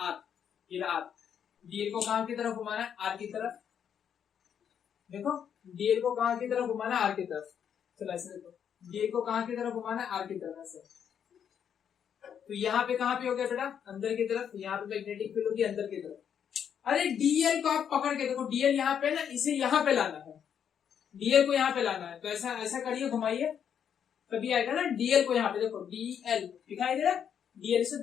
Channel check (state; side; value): quieter; right; 8.3 dB